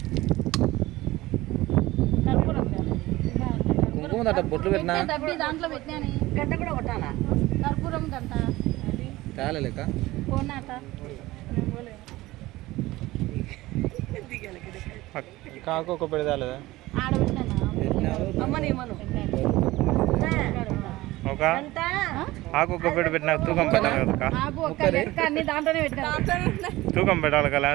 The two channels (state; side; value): quieter; left; 18.4 dB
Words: కుంకుమ అట్ట బొట్లు పెట్టినా దాంట్లో పెట్టినా గంట కూడా కొట్టాలా కర్పూరం గంట తేలే లెక్క కాకు ఒక పెడతాలేదా ఒక ఆకు ఒక పెట్టి పెట్టినా తూకం పెట్టాలి కదా తూకం పెట్టాలి కదా